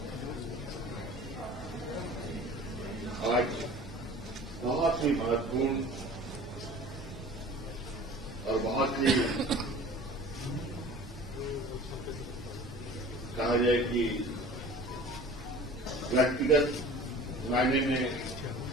आज बहुत ही महत्वपूर्ण और बहुत ही कहा जाए कि व्यक्तिगत मायने में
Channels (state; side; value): normal; both; correlation 0.43